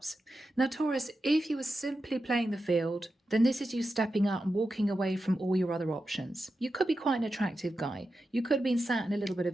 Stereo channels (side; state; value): both; normal; correlation 0.90